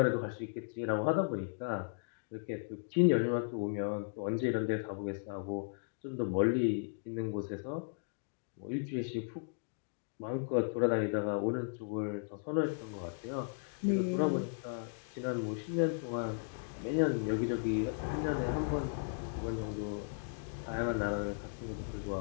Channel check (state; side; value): silent; right; digital silence